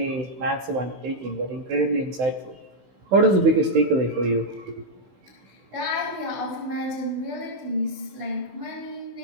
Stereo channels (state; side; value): late; left; 16 ms